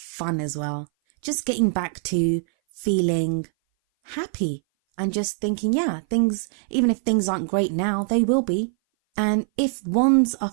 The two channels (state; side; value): silent; left; 58 dB below the other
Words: as well. Just getting back to feeling happy and just thinking, yeah, things, even if things aren't great now, they will be. And if wands are